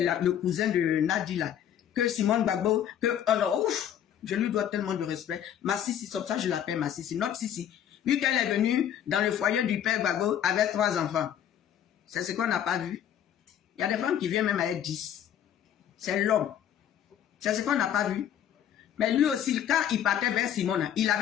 cousin de Nadi là, que Simone Gbagbo, alors, ouf, je lui dois tellement de respect. Ma Sissi, comme ça je l'appelle ma Sissi, notre Sissi. Vu qu'elle est venue dans le foyer du père Gbagbo avec 3 enfants. C'est ce qu'on n'a pas vu. Il y a des femmes qui viennent même avec 10. C'est l'homme. C'est ce qu'on n'a pas vu. Mais lui aussi, quand il partait vers Simone, il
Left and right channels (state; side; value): quieter; right; 9.9 dB